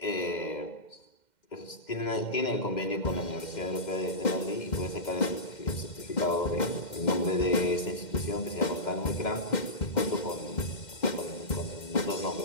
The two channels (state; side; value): late; right; 2.1 ms